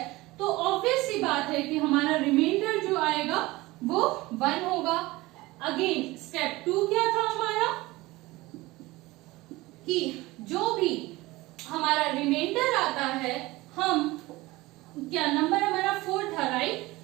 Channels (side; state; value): left; quieter; 20.2 dB